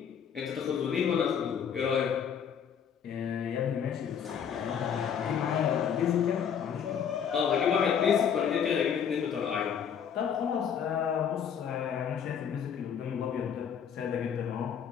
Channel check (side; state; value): right; quieter; 7.9 dB